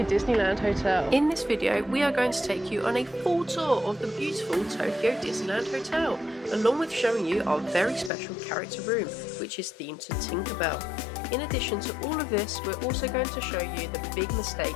Disneyland Hotel. In this video, we are going to take you on a full tour of the beautiful Tokyo Disneyland Hotel, along with showing you our very special character room, which is themed to Tinkerbell. In addition to all of this, we're also going to show you the big mistake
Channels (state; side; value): drops out; right; at 8.1 s